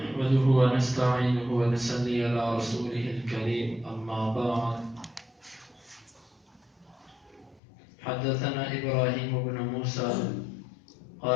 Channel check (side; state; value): right; drops out; at 7.6 s